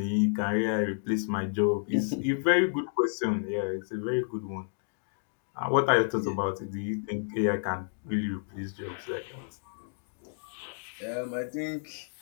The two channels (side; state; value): right; silent; digital silence